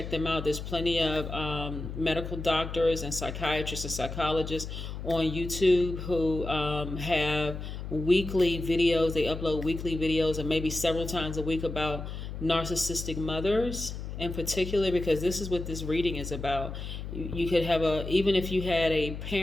them out. There's plenty of medical doctors and psychiatrists and psychologists on YouTube who have weekly videos. They upload weekly videos and maybe several times a week about narcissistic mothers in particular, because this is what this reading is about. You could have even if you had a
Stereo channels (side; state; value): left; noise; hum, 7 dB below the sound